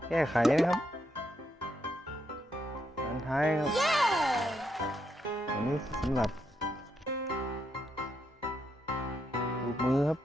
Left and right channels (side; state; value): both; normal; correlation 0.79